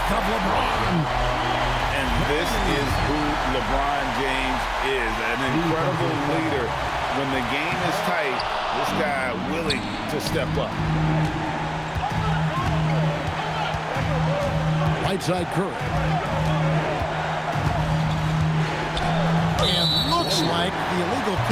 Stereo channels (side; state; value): both; identical; correlation 1.00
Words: of LeBron. And this is who LeBron James is. An incredible leader. When the game is tight, this guy willing to step up. Right side Curry. And looks like the illegal